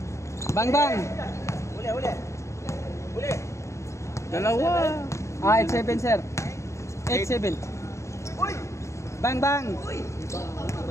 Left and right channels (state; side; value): late; right; 0.14 ms